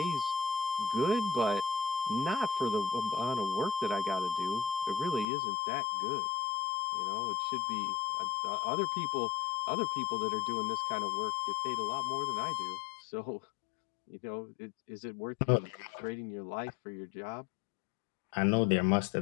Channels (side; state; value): right; drops out; at 5.2 s